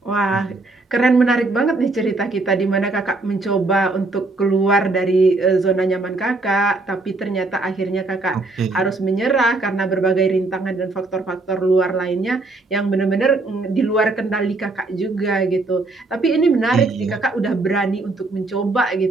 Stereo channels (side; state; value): left; quieter; 3.3 dB